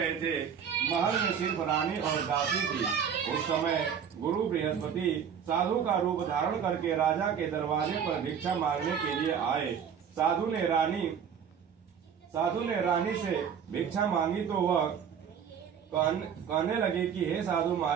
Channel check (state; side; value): quieter; left; 7.7 dB